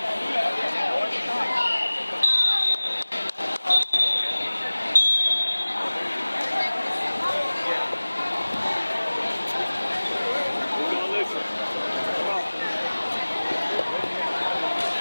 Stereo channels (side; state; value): both; inverted; correlation -1.00